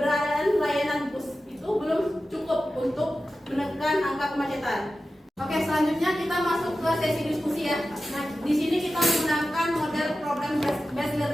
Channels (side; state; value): both; normal; correlation 0.94